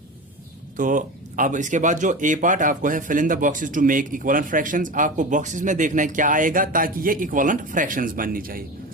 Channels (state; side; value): normal; both; correlation 0.28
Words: तो अब इसके बाद जो ए पार्ट आपको है, fill in the boxes to make equivalent fractions. आपको बॉक्सेस में देखना है क्या आएगा ताकि ये इक्वलेंट फ्रैक्शंस बननी चाहिए।